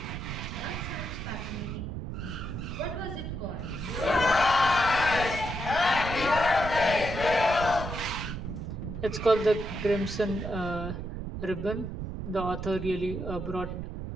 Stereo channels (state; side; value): noise; right; rumble, 6 dB below the sound